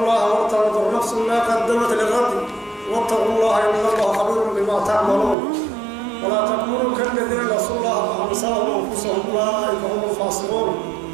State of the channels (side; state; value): left; drops out; at 5.4 s